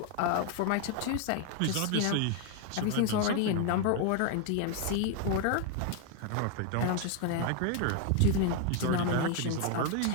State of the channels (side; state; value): both; different; correlation 0.00